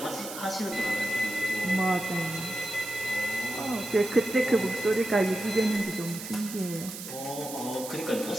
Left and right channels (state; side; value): noise; right; hiss, 10 dB below the sound